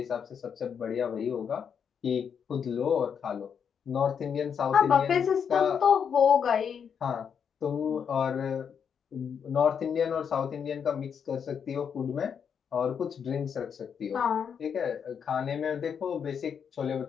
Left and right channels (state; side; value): quieter; right; 7.3 dB